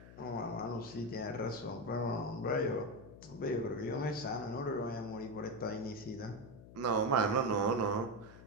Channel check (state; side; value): noise; left; hum, 17 dB below the sound